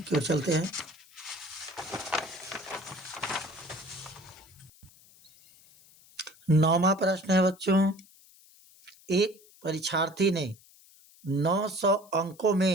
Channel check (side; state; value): left; noise; hiss, 26 dB below the sound